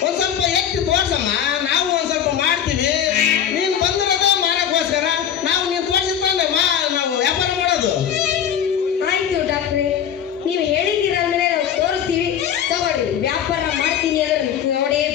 ಒಂದ್ ಸ್ವಲ್ಪ ಎತ್ತಿ ತೋರ್ಸಮ್ಮ, ನಾವು ಒಂದ್ ಸ್ವಲ್ಪ ಮಾಡ್ತೀವಿ. ನೀನ್ ಬಂದಿರೋದ ಮಾರಕ್ಕೋಸ್ಕರ, ನಾವು ನೀನ್ ತೋರ್ಸಿದ್ರೆ ನಾವು ವ್ಯಾಪಾರ ಮಾಡೋದು. ಆಯ್ತು ಡಾಕ್ಟ್ರೆ, ನೀವು ಹೇಳಿದ್ದೀರ ಅಂದ್ಮೇಲೆ ನಾವು ತೋರಿಸ್ತೀವಿ. ತಗೊಳ್ಳಿ, ವ್ಯಾಪಾರ ಮಾಡ್ತೀನಿ ಅಂದ್ರೆ ನೋಡೇ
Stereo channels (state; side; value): quieter; right; 9.2 dB